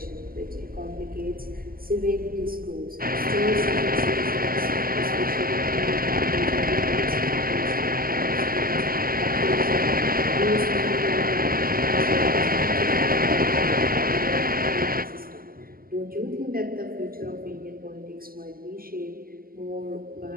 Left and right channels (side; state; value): left; late; 0.42 ms